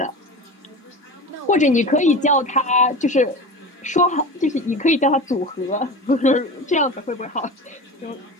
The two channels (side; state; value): both; normal; correlation 0.31